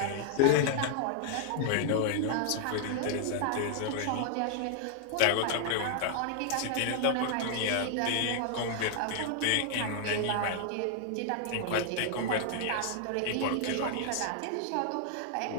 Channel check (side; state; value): both; different; correlation 0.00